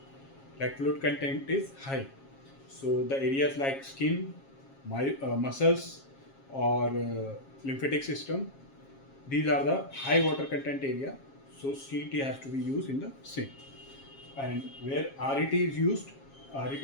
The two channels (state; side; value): late; right; 7.4 ms